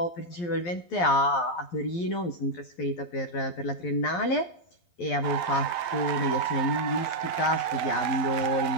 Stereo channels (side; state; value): right; late; 11 ms